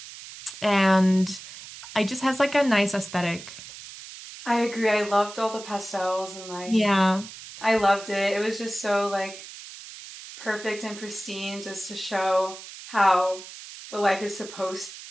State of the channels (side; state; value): right; noise; hiss, 14 dB below the sound